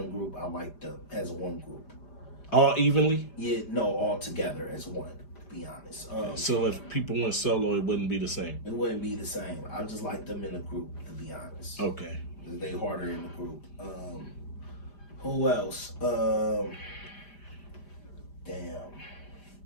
group. I like them as one group. All evenly. Yeah, no, all together as one. To be honest. So if people went solo, it wouldn't be the same. It wouldn't be the same. I just like them in a group. To be honest. Okay. They harder in the group. Who else? Damn.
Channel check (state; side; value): late; right; 5.0 ms